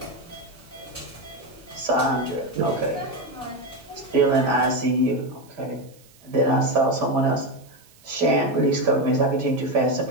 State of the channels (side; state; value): right; noise; hiss, 28 dB below the sound